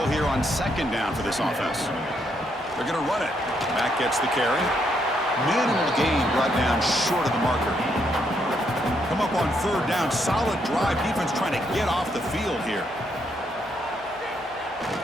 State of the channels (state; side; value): normal; both; correlation 0.75